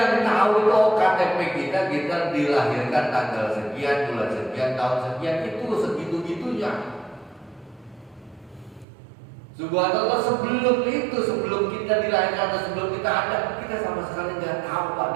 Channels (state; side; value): drops out; left; at 8.8 s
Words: tahu itu KTP kita dilahirkan tanggal sekian, bulan sekian, tahun sekian, itu segitu-gitunya. Subhanallah, sebelum itu, sebelum kita dilahirkan atau sebelum kita ada, kita sama sekali nggak tahu Pak,